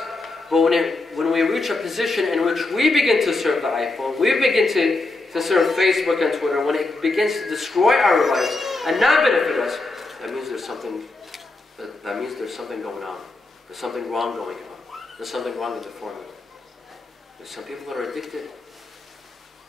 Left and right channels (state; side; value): quieter; right; 3.1 dB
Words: But when we reach a position in which we begin to serve the iPhone, we begin to serve Facebook and Twitter, when it begins to destroy our lives and not benefit us, that means there's something going on. There's something wrong going on. There's something wrong with the formula. There's some people that are addicted.